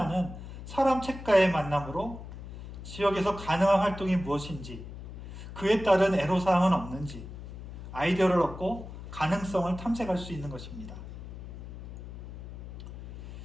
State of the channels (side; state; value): left; noise; hum, 11 dB below the sound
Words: 사람 책과의 만남으로 지역에서 가능한 활동이 무엇인지, 그에 따른 애로사항은 없는지 아이디어를 얻고 가능성을 탐색할 수 있는 것입니다.